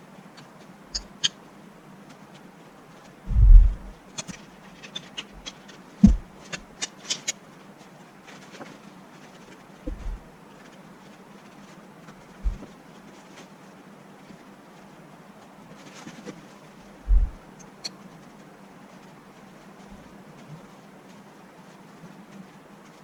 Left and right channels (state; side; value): identical; both; correlation 1.00